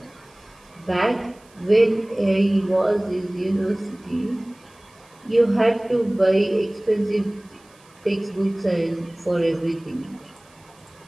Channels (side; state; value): right; noise; hiss, 29 dB below the sound